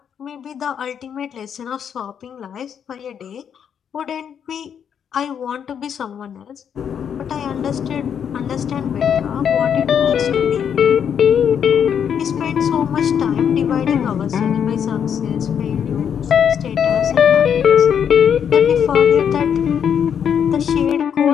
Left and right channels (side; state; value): right; quieter; 8.1 dB